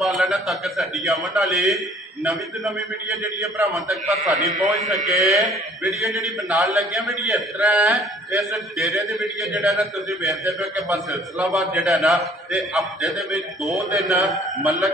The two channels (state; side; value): normal; both; correlation 0.55